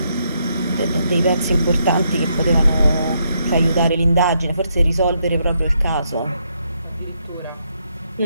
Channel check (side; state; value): both; inverted; correlation -0.77